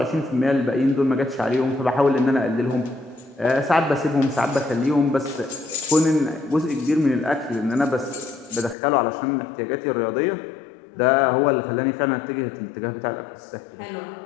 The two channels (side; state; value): right; drops out; at 8.8 s